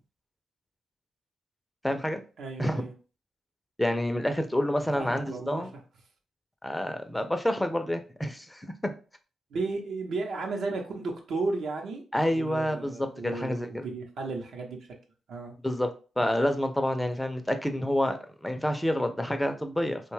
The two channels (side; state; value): both; normal; correlation 0.93